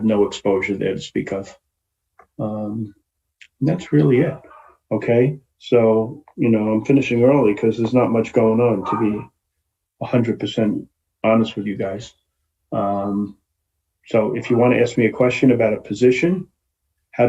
no exposure there to speak of. That's really it. Okay, so I'm finishing early because there's not much going on, to be 100% honest with you guys. So if you want to ask me a question about a position, how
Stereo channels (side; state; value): both; identical; correlation 1.00